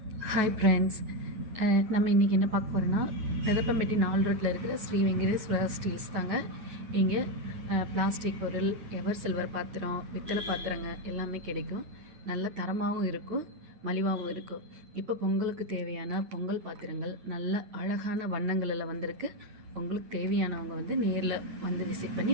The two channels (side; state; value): left; late; 9.3 ms